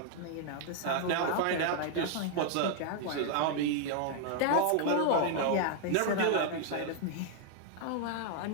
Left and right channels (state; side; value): different; both; correlation 0.00